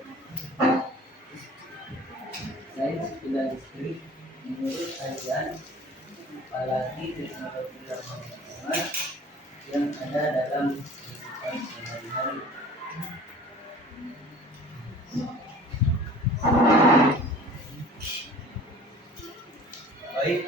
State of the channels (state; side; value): normal; both; correlation 0.45